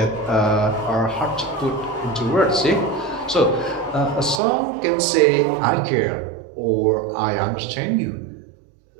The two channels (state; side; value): drops out; left; at 4.4 s